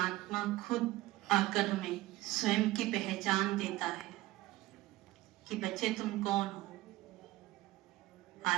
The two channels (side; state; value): left; quieter; 17.7 dB